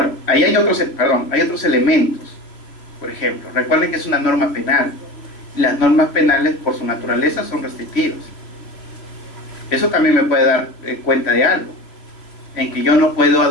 ahí hay otros elementos. Por ejemplo, recuerden que es una norma penal. Las normas penales, por su naturaleza, son restrictivas. Eso también me puede dar cuenta de algo, en que yo no puedo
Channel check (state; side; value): late; right; 3.1 ms